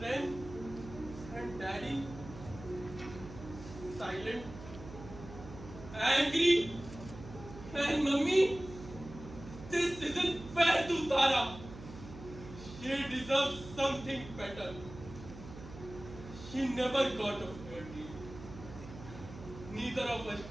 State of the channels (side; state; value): right; noise; hum, 14 dB below the sound